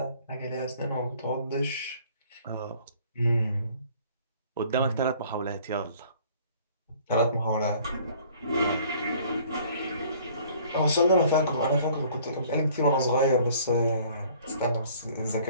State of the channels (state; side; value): inverted; both; correlation -0.54